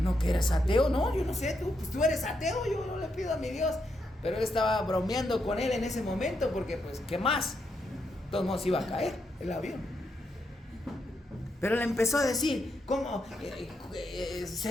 que eres ateo? No, yo no sé, tú eres ateo, yo no le pido a mi Dios. Pero él estaba bromeando con él en ese momento porque pues, ¿qué más? De todos modos iba a caer el avión. Pero le empezó a decir, ¿cómo?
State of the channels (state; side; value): normal; both; correlation 0.81